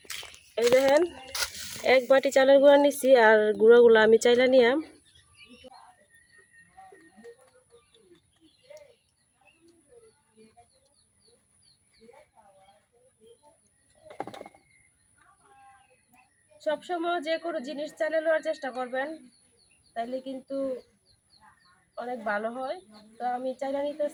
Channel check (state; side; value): identical; both; correlation 1.00